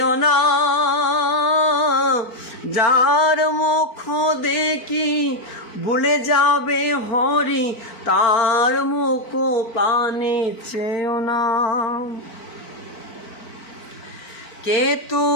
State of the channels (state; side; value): late; right; 4.5 ms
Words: না, যার মুখ দেখি ভুলে যাবে হরি, তার মুখ পানে চেও না। কে